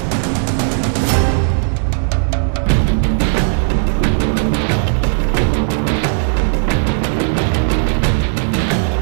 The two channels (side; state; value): left; silent; digital silence